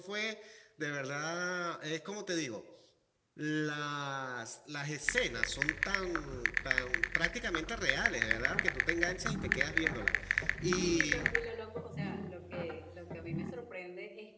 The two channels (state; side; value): identical; both; correlation 1.00